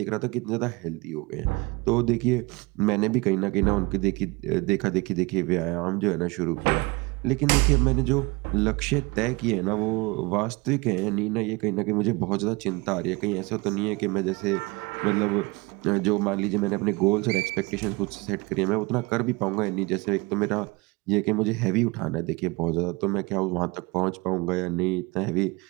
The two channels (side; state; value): left; quieter; 25.5 dB